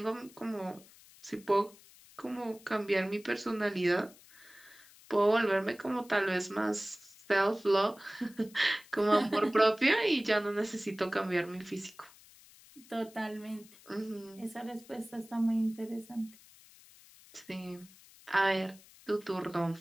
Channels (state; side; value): noise; left; hiss, 24 dB below the sound